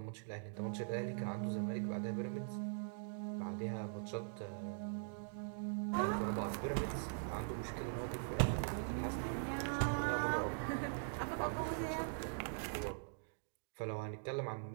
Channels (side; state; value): left; silent; digital silence